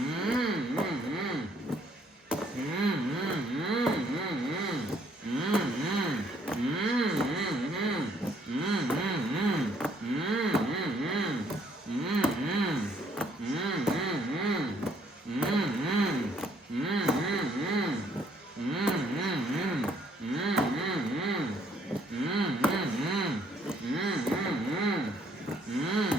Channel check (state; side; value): normal; both; correlation 0.66